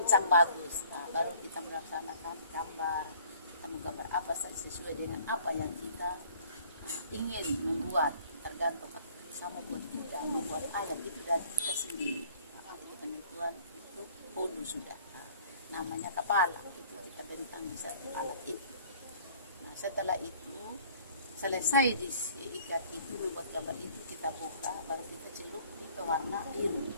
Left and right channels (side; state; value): both; inverted; correlation -0.54